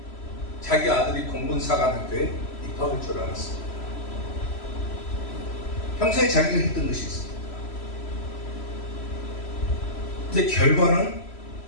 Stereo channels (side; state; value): right; late; 3.0 ms